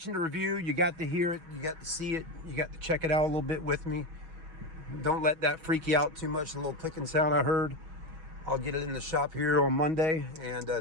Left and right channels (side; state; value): left; late; 6.2 ms